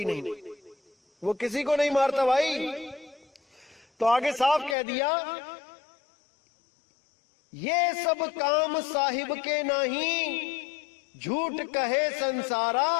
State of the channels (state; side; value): drops out; right; at 4.8 s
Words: नहीं। वो किसी को नहीं मारता भाई। तो आगे साफ कह दिया, ये सब काम साहिब के नहीं, झूठ कहे संसारा।